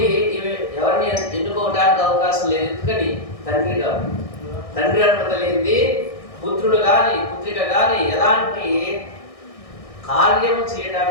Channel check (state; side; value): late; right; 1.6 ms